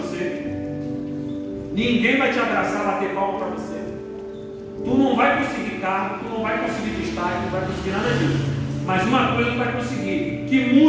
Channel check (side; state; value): both; identical; correlation 1.00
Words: ninguém vai te abraçar, bater palma para você, tu não vai conseguir carro, tu não vai conseguir destaque, não vai conseguir nada disso. Mas uma coisa tu vai conseguir, que